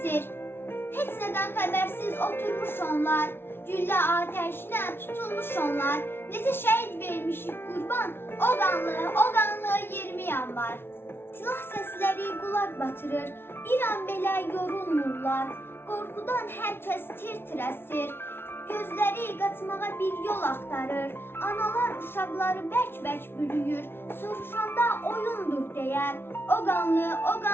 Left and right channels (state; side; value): late; right; 0.11 ms